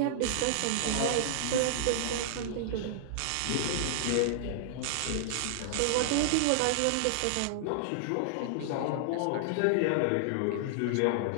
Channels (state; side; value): different; both; correlation -0.01